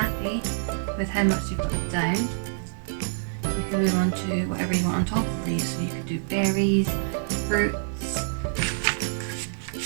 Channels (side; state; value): left; silent; digital silence